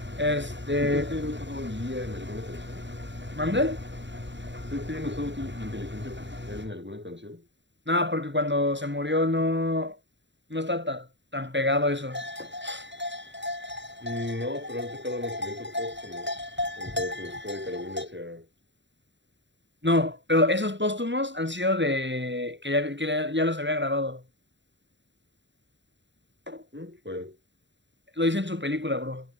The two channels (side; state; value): left; late; 0.53 ms